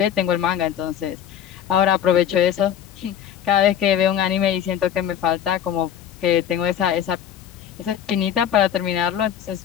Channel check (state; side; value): quieter; right; 9.6 dB